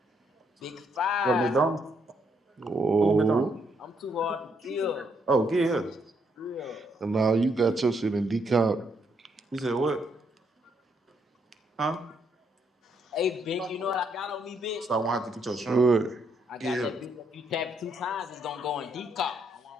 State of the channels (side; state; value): both; normal; correlation 0.74